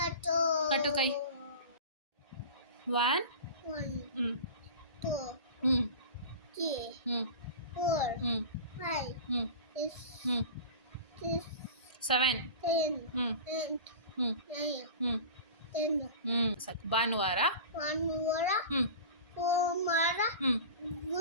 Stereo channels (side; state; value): both; inverted; correlation -0.34